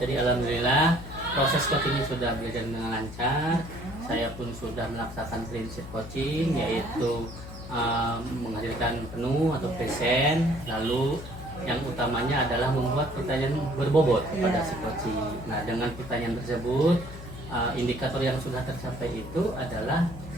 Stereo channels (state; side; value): noise; left; hum, 13 dB below the sound